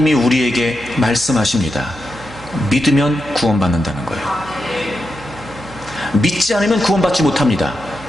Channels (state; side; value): noise; right; hum, 19 dB below the sound